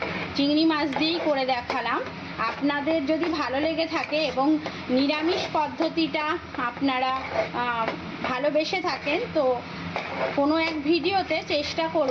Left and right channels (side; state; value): both; identical; correlation 1.00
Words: চিংড়ি মাছ দিয়েই করে দেখালাম। আপনাদের যদি ভালো লেগে থাকে এবং নিরামিষ পদ্ধতিটা আপনারা ভালোবেসে থাকেন, তো কোনো এক ভিডিওতে চেষ্টা